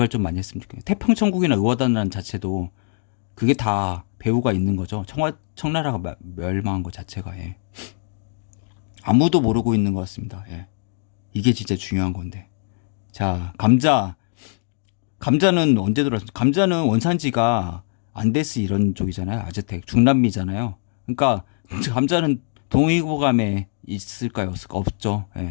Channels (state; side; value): silent; right; digital silence